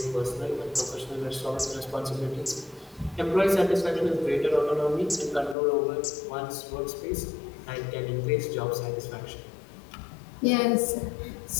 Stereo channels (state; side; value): drops out; right; at 5.6 s